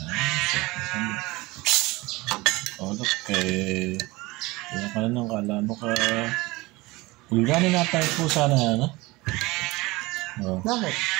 Look, kaya ka na kala mo ka... Ulgani na tayo po sana, ano? Oh. Bakit?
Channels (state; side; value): quieter; left; 21.9 dB